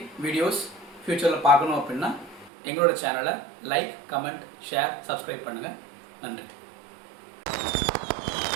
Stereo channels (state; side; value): drops out; left; at 2.5 s